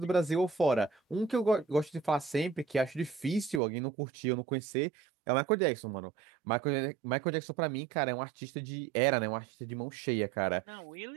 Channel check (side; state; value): left; drops out; at 3.6 s